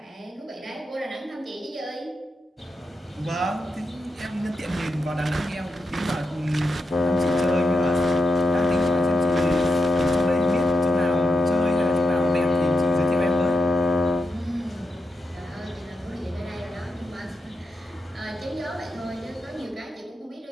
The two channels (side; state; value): both; normal; correlation 0.87